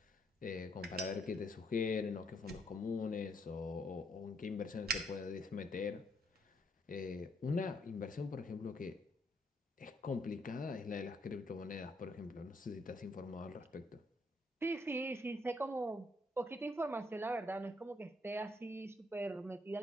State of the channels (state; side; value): normal; both; correlation 0.72